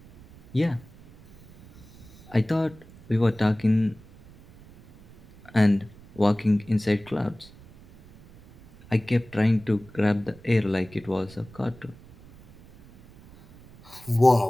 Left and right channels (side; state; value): right; noise; rumble, 23 dB below the sound